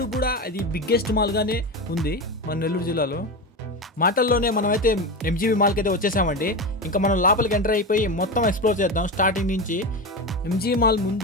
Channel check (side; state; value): both; normal; correlation 0.20